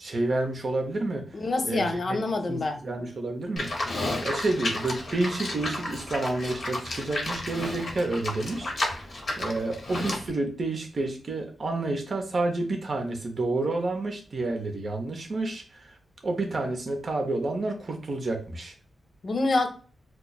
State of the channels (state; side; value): normal; both; correlation 0.87